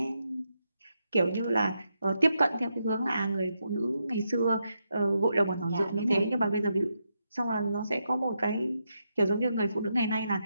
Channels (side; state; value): both; inverted; correlation -0.83